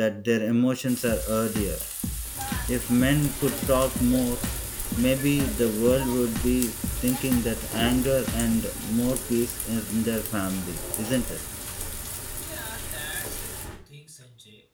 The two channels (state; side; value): identical; both; correlation 1.00